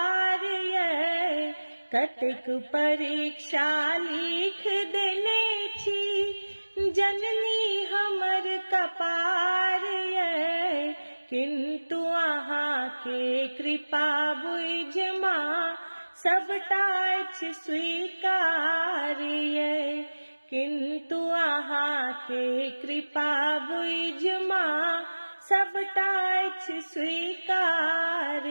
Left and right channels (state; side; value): inverted; both; correlation -1.00